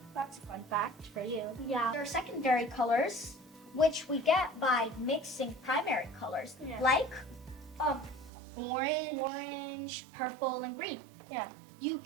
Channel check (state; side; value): drops out; left; at 8.3 s